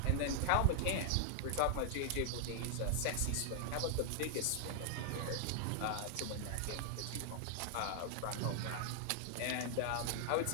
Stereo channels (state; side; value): different; both; correlation 0.00